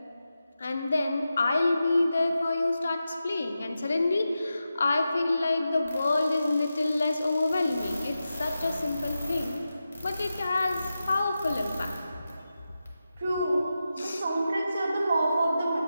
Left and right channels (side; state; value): both; inverted; correlation -0.91